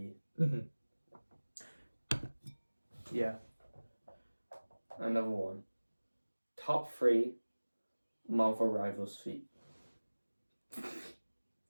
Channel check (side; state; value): both; inverted; correlation -1.00